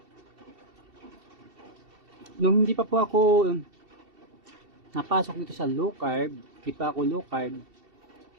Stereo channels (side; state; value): left; late; 2.7 ms